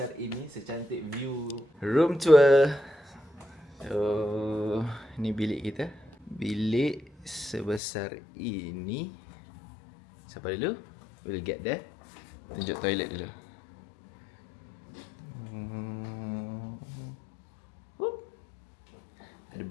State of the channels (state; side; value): drops out; right; at 7.8 s